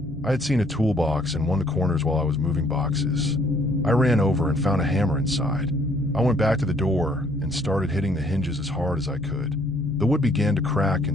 I had seen a toolbox in one of the corners while I was moving boxes. I ran over and found a hammer inside. I went back to the door and started hitting the hinges as hard as I could. The wood began to crack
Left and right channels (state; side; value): normal; both; correlation 0.63